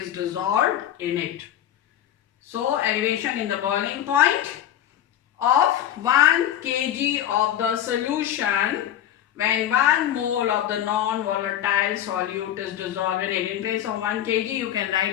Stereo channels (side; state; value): right; quieter; 11.3 dB